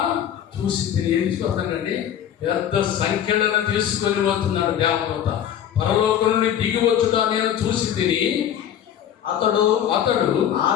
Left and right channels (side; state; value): right; quieter; 9.9 dB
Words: ఏం చూస్తానండి? పెద్ద సంఖ్యలను తీసుకొని పోతున్నాడు దేవదూత. పరలోకం నుండి దిగి వచ్చుట నేను చూసి తిని. అతడు